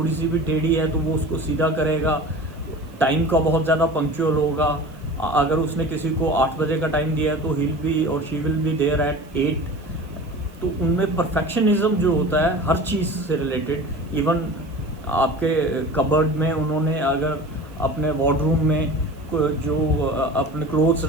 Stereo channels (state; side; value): noise; right; hiss, 30 dB below the sound